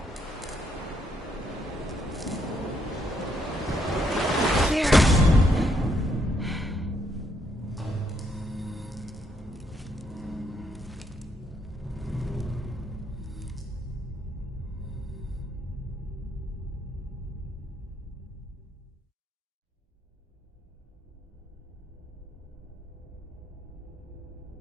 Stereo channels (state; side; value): normal; both; correlation 0.74